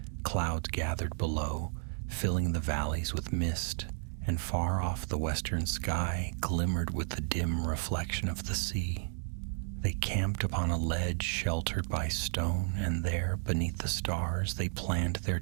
Clouds gathered below, filling the valleys with mist, and far off the western sky glimmered with the dim reflection of the sea. They camped upon a ledge sheltered by stone, and there, beneath the stars, they planned their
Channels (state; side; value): silent; left; 56 dB below the other